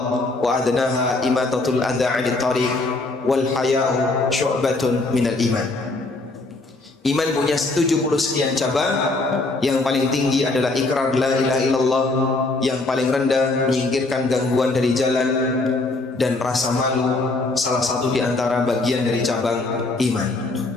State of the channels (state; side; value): quieter; right; 3.2 dB